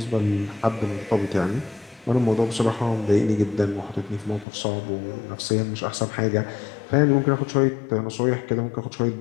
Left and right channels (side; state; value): right; drops out; at 4.5 s